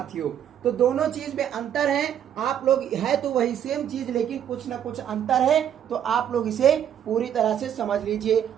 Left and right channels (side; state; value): left; quieter; 9.7 dB